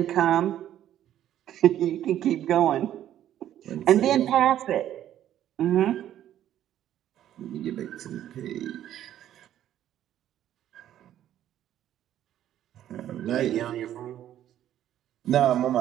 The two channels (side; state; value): left; quieter; 11.6 dB